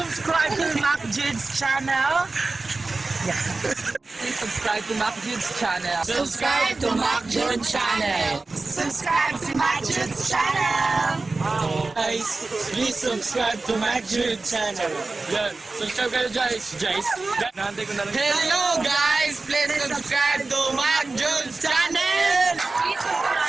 to Mac Jude's channel. Please subscribe to Mac Jude's channel. Subscribe to Mac Jude channel. Subscribe to my Jude's channel! Guys, please subscribe to Mac Jude channel. Yan, subscribe kayo guys. Nahantay ko na lang. Hello guys, please subscribe to Mac Jude channel.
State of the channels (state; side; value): quieter; left; 3.5 dB